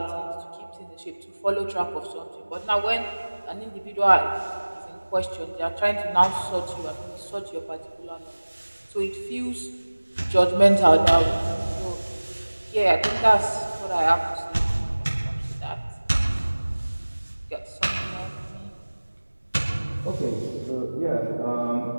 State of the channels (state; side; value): inverted; both; correlation -1.00